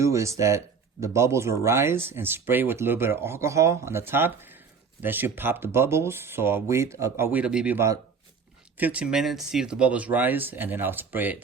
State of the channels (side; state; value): left; quieter; 5.6 dB